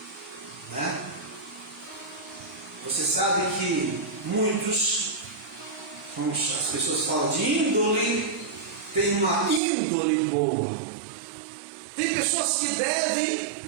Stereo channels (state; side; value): drops out; left; at 9.6 s